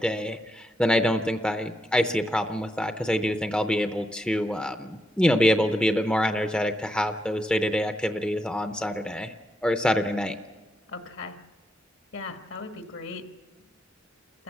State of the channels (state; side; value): normal; both; correlation 0.81